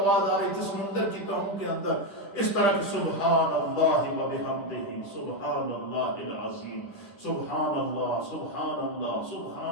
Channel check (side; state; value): right; late; 9.7 ms